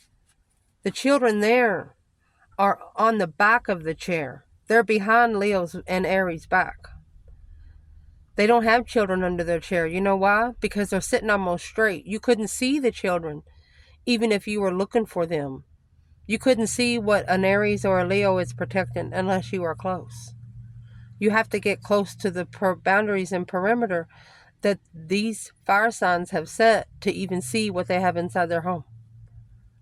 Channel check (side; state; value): both; identical; correlation 1.00